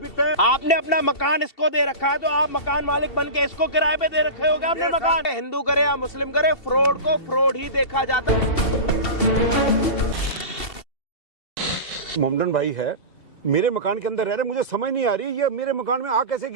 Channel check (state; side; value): late; right; 2.7 ms